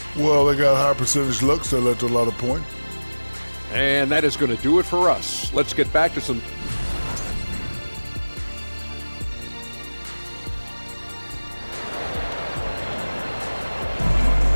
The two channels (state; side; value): inverted; both; correlation -1.00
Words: Well, they got high percentage looks that led to a lot of points. And that is going to do it for us. Let's get back to some...